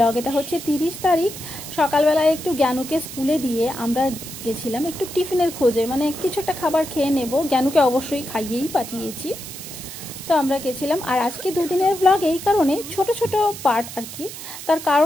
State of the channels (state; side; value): noise; right; hiss, 11 dB below the sound